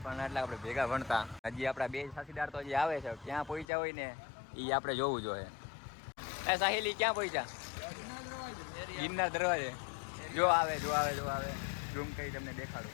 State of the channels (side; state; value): right; drops out; at 3.7 s